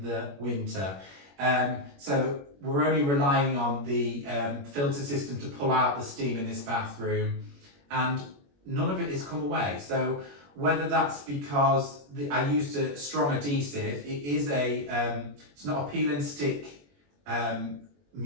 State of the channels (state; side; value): late; left; 21 ms